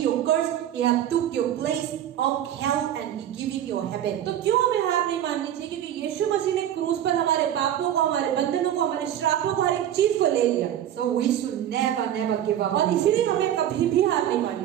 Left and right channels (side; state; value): left; quieter; 11.0 dB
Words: your curse. He have took your place of hell and He giving your heaven. तो क्यों हमें हार नहीं माननी चाहिए? क्योंकि यीशु मसीह ने क्रूस पर हमारे पापों को, हमारे बंधनों को, हमारे श्रापों को, हर एक चीज को ले लिया। So we should never give up. और इसीलिए हमें कभी भी हार नहीं